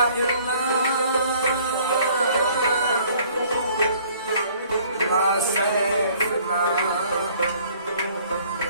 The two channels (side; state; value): both; inverted; correlation -0.57